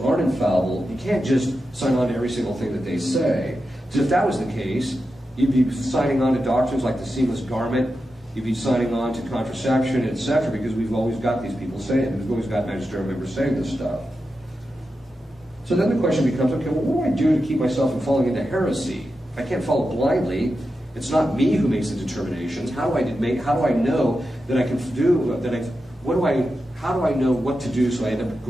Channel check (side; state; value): both; normal; correlation 0.90